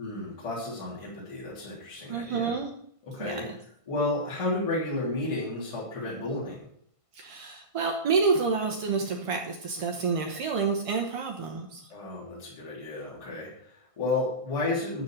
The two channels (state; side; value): late; left; 1.5 ms